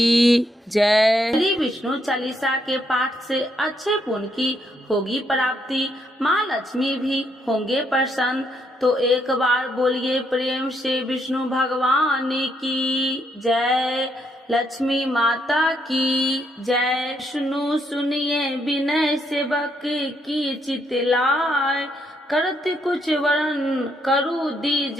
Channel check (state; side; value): normal; both; correlation 0.75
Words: जय। श्री विष्णु चालीसा के पाठ से अच्छे पुण्य की होगी प्राप्ति, माँ लक्ष्मी भी होंगे प्रसन्न। तो एक बार बोलिए प्रेम से विष्णु भगवान की जय, लक्ष्मी माता की जय। विष्णु सुनिए विनय सेवक की चितलाय, करत कुछ वरण करु